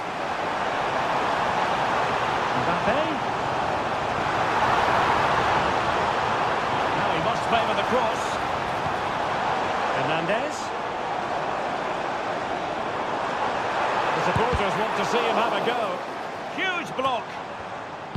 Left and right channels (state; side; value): identical; both; correlation 1.00